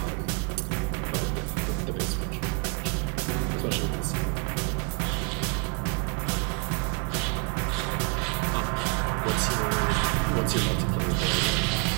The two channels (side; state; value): left; quieter; 34.2 dB